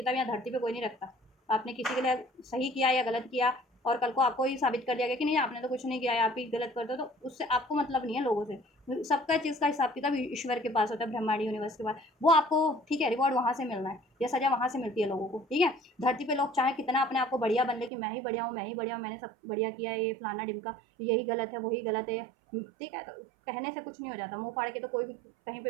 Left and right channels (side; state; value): left; drops out; at 17.9 s